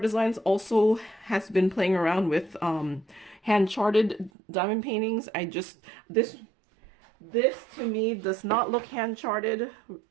Designs also has been playing around with hand-charted diamond paintings. This to me does not look hand-charted,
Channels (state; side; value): drops out; left; at 4.3 s